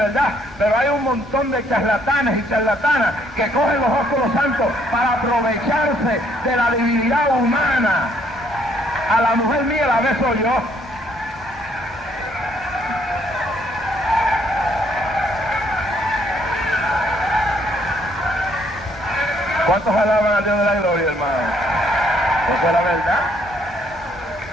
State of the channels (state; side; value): normal; both; correlation 0.68